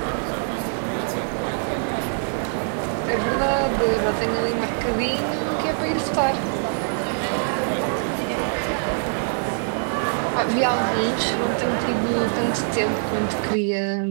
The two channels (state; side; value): silent; left; 58 dB below the other